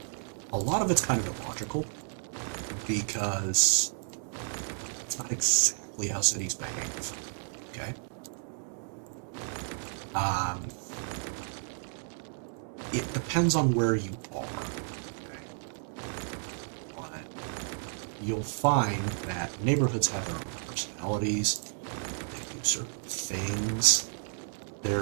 a lot of it's kind of illogical, because it's not exactly how cities behave, okay? It depends on where you are, okay? But you'll find that neighborhoods have their own personalities, they do certain things.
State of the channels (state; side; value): silent; left; digital silence